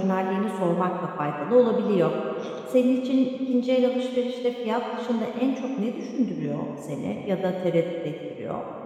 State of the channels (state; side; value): identical; both; correlation 1.00